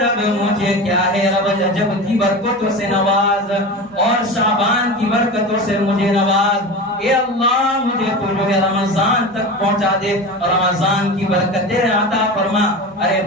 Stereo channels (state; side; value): normal; both; correlation 0.29